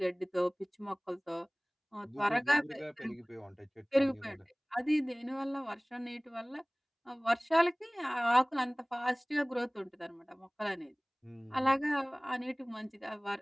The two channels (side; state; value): both; identical; correlation 1.00